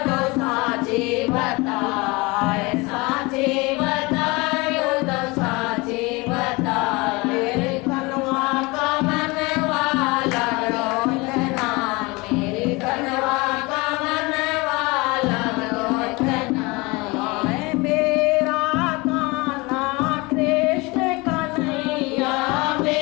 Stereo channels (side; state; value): right; quieter; 24.9 dB